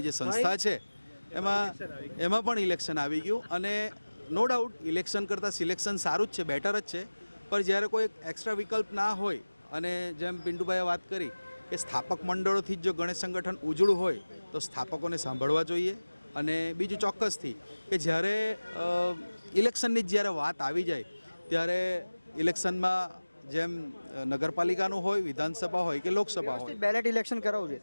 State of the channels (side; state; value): both; inverted; correlation -1.00